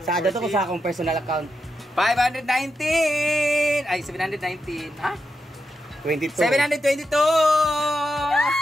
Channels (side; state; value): both; normal; correlation 0.86